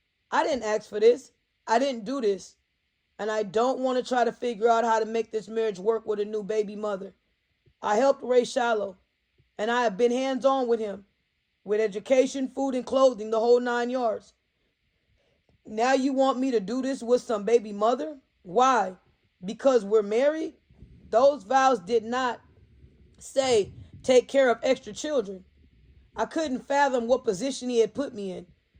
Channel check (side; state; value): both; identical; correlation 1.00